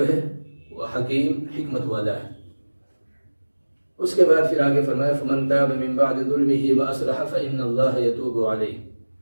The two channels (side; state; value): both; inverted; correlation -1.00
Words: ہے، وہ حکیم حکمت والا ہے۔ اس کے بعد پھر آگے فرمایا فمن تاب من بعد ظلمه واصلح فإن اللہ یتوب علیہ،